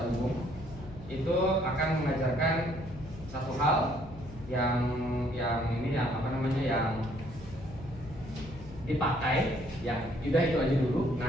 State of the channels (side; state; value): left; noise; hum, 16 dB below the sound